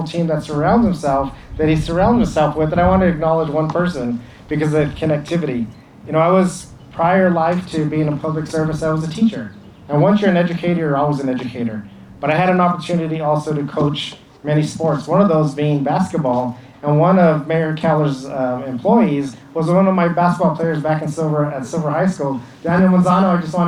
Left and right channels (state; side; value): identical; both; correlation 1.00